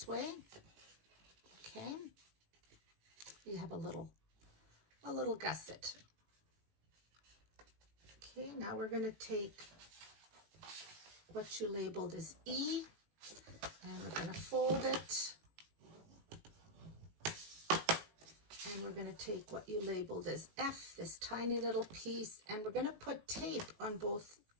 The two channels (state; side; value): late; left; 19 ms